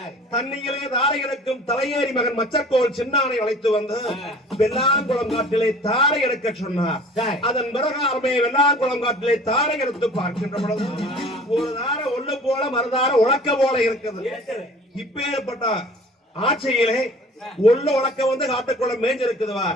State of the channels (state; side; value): normal; both; correlation 0.46